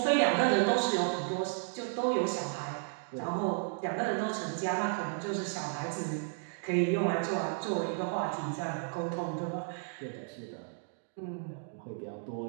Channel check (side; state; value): left; silent; 56 dB below the other